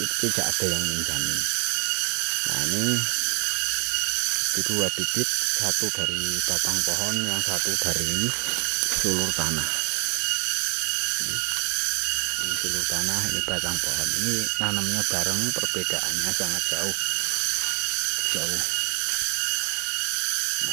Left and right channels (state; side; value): quieter; left; 36.9 dB